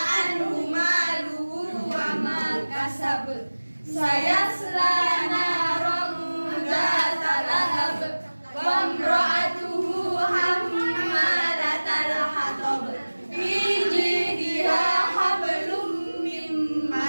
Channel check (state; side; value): inverted; both; correlation -1.00